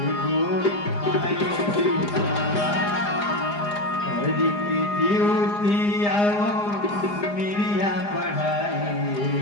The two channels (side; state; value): right; late; 4.9 ms